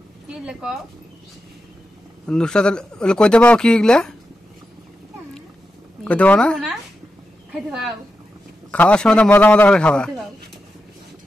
কি লেখাও নুসরাত কইতে পাও কি এগুলা কইতে পাও না? খাইতে পাও, খাওয়ার সময় তো মজা মজা করে খাবা।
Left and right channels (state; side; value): normal; both; correlation 0.89